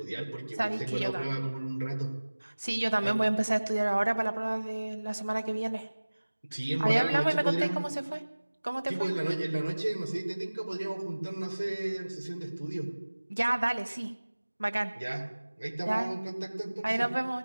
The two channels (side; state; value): both; inverted; correlation -1.00